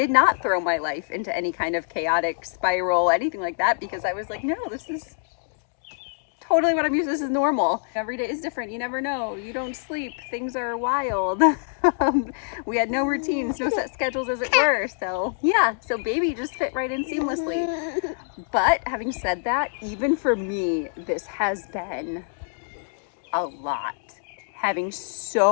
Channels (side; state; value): right; silent; digital silence